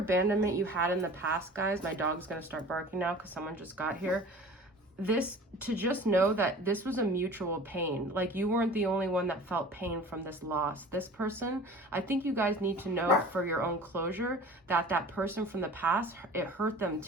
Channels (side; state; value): both; normal; correlation 0.42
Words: you had in the past, guys, my dog's gonna start barking now because someone just got here. to just know that this was a mutual pain. Like, you weren't the only one that felt pain from this loss. This person, I think you guys need to know for your own closure that that person from the past, it hurt them